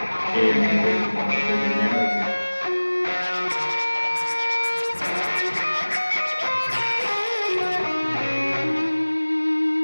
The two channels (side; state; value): both; inverted; correlation -1.00